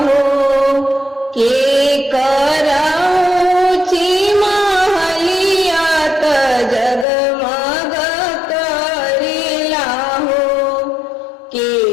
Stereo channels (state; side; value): drops out; right; at 7.1 s